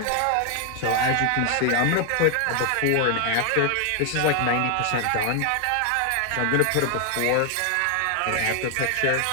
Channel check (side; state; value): both; different; correlation 0.01